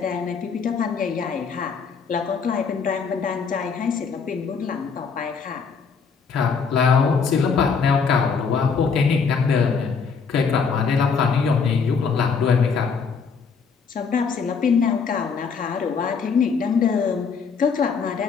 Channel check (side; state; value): right; quieter; 5.7 dB